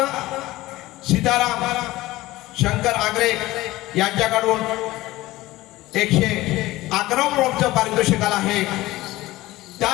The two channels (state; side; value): quieter; right; 17.9 dB